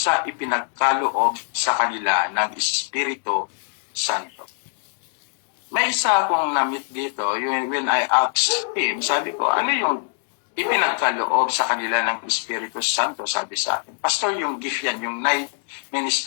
ipinagkaloob sa kanila ng Espiritu Santo. May isa akong na-meet dito, when I asked him, sabi ko, ano yung ipinagkaloob sa kanila ng Espiritu Santo, sabi sa akin. Pastor, yung gift yan, yung night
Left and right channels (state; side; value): silent; right; 63 dB below the other